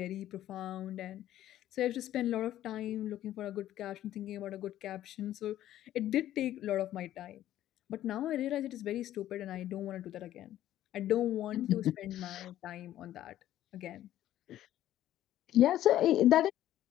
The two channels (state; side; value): quieter; right; 12.9 dB